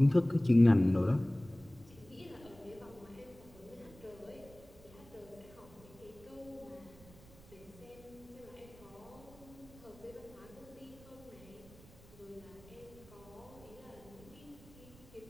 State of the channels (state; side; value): noise; right; rumble, 22 dB below the sound